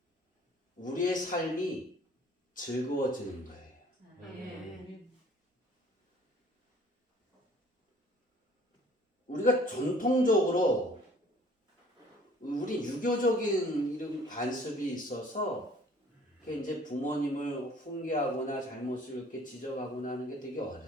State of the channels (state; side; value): normal; both; correlation 0.54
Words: 우리의 삶이 즐거워지는 거예요. 우리가 전통적으로 우리 유교적인 이런 관습이 있어서 이제 부모님을 훈계하거나 잘못을 이렇게 지적하거나 하는 게 되게